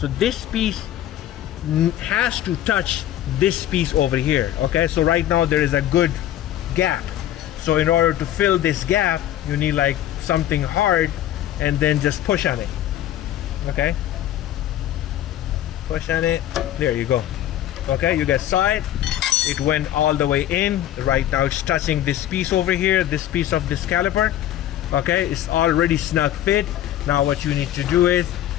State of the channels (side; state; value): right; quieter; 12.4 dB